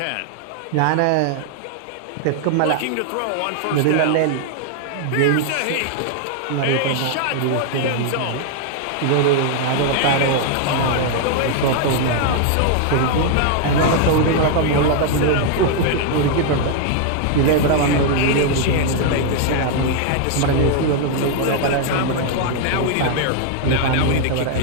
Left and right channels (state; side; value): different; both; correlation 0.00